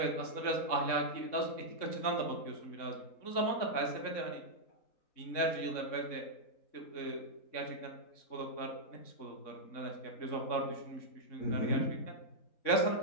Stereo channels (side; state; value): right; late; 3.6 ms